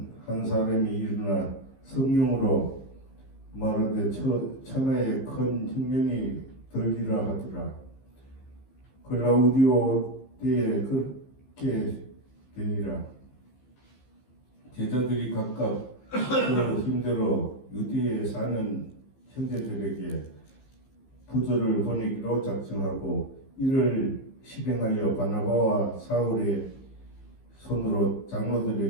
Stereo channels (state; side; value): late; right; 15 ms